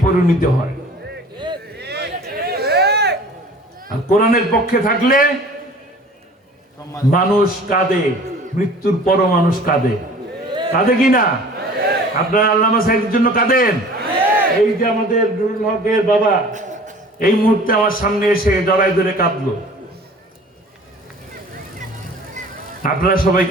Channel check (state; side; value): normal; both; correlation 0.46